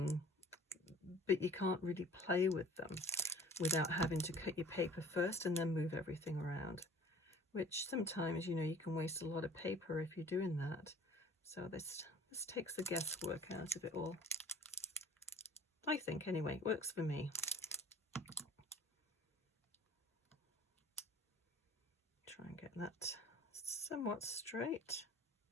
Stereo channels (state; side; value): normal; both; correlation 0.48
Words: you can't really play with them without having to cut your paper first and then move everything around, which sometimes, you know, you can waste a lot of paper if you're doing that. So this takes the guesswork out of it all. I think, anyway, it works for me. Try and get that somewhat straight.